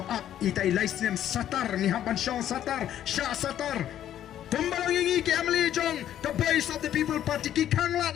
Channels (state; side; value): quieter; right; 11.1 dB